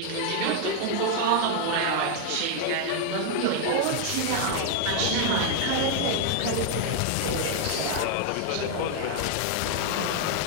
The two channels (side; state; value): both; different; correlation 0.00